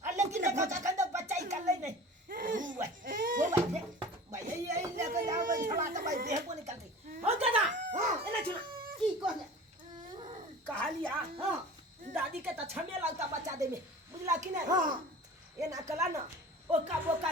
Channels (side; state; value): both; normal; correlation 0.39